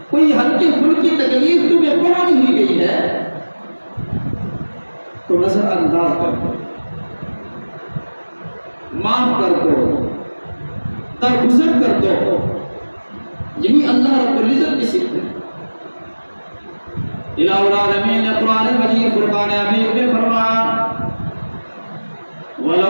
کوئی ہلکی پھلکی تکلیف تمہیں پہنچ ہی گئی ہے، تو نظر انداز کر دو، معاف کر دو، درگزر کر دو۔ یہی اللہ رب العزت کی صفت ہے۔ الہ العالمین نے قرآن مجید فرقان حمید میں فرمایا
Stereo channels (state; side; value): inverted; both; correlation -1.00